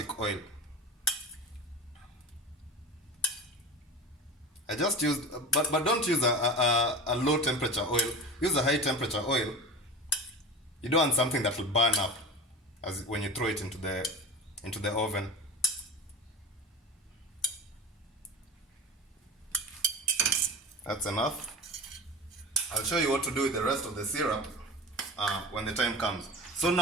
oil. I just used, but don't use a low temperature oil. Use a high temperature oil. You don't want something that will burn up when you throw it into the oven. That's enough. I'll show you what to do with the rest of the syrup when the time comes. So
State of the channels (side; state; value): both; normal; correlation 0.31